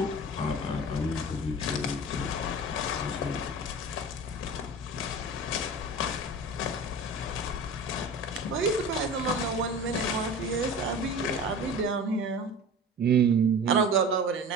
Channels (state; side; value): normal; both; correlation 0.35